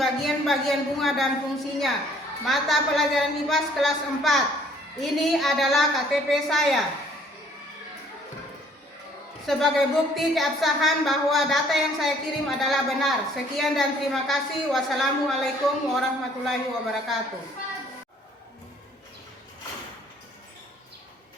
bunga dan fungsinya. Mata pelajaran IPAS kelas 4. Ini adalah KTP saya. Sebagai bukti keabsahan bahwa data yang saya kirim adalah benar. Sekian dan terima kasih. Wassalamualaikum warahmatullahi wabarakatuh.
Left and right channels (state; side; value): normal; both; correlation 0.59